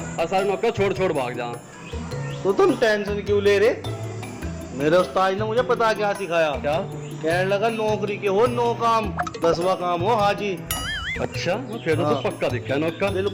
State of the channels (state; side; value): identical; both; correlation 1.00